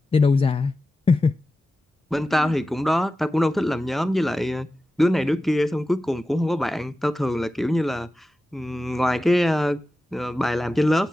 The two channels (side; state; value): both; normal; correlation 0.94